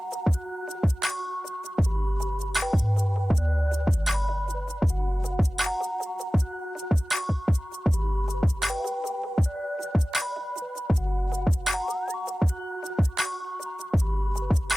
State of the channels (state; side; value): normal; both; correlation 0.97